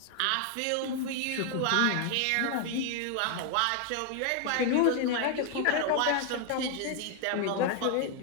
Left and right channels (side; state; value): both; different; correlation 0.00